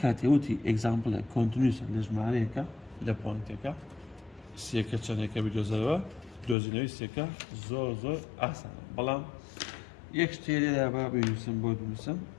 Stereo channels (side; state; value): right; drops out; at 6.6 s